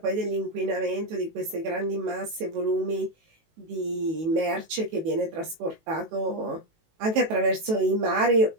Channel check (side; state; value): left; late; 18 ms